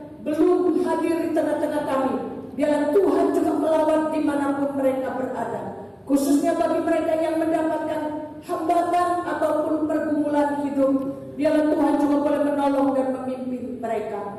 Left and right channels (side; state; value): both; identical; correlation 1.00